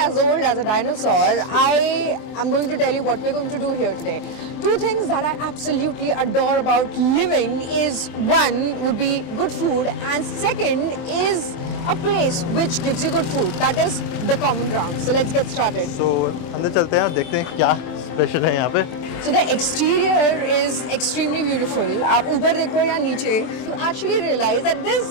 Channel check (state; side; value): late; right; 24 ms